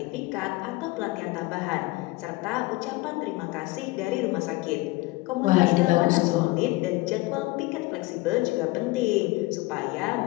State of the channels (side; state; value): right; quieter; 21.7 dB